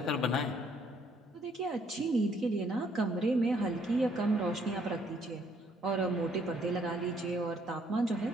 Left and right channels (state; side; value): normal; both; correlation 0.66